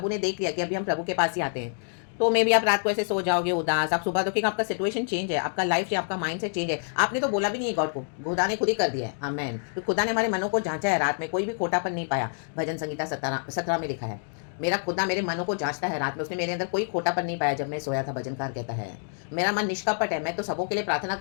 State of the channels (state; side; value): silent; right; digital silence